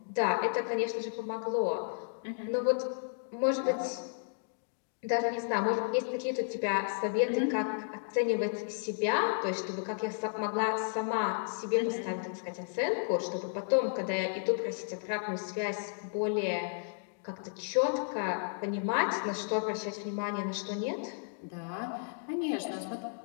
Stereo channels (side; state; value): right; silent; digital silence